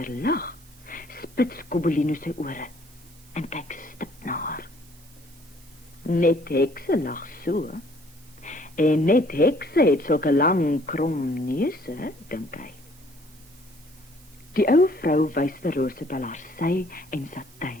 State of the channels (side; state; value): right; noise; hiss, 26 dB below the sound